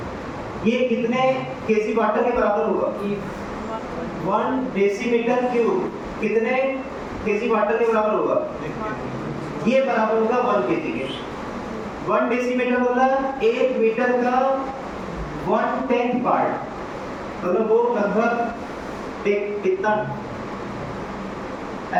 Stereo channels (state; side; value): identical; both; correlation 1.00